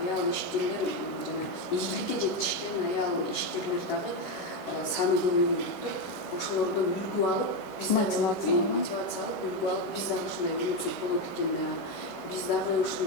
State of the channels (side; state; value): right; late; 11 ms